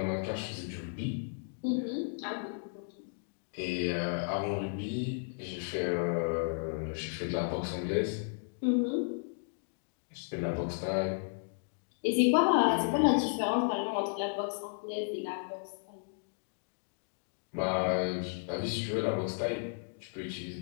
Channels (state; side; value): silent; right; digital silence